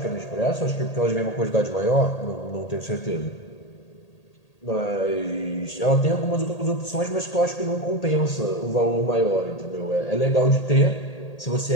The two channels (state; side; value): late; right; 1.8 ms